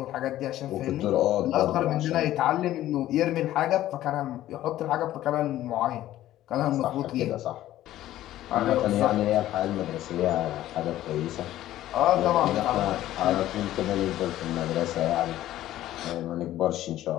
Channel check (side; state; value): right; quieter; 13.9 dB